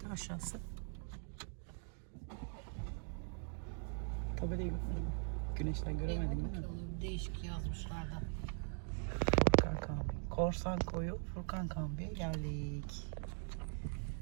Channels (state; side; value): silent; left; 50 dB below the other